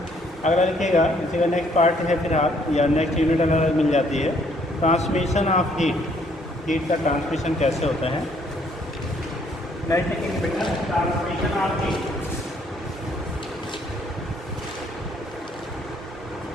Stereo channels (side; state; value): both; normal; correlation 0.65